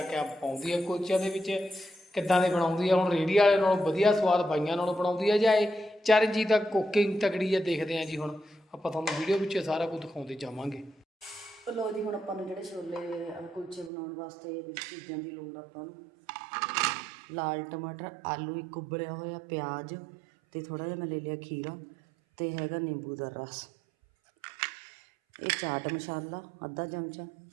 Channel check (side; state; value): left; drops out; at 13.9 s